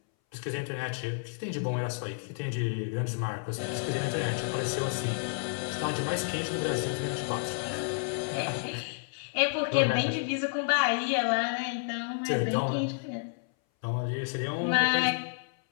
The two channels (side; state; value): right; silent; 58 dB below the other